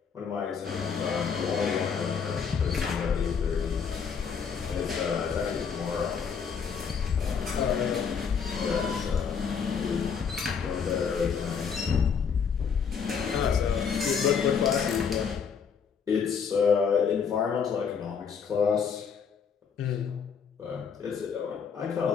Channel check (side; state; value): right; quieter; 6.4 dB